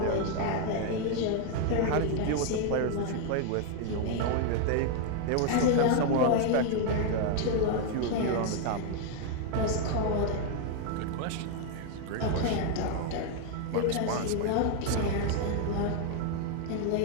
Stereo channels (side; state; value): both; different; correlation 0.01